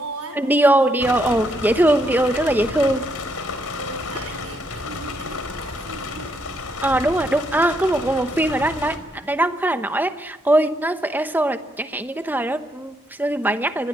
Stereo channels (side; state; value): both; normal; correlation 0.76